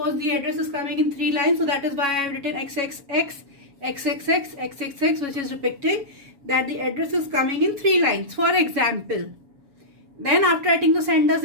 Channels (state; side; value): late; left; 7.2 ms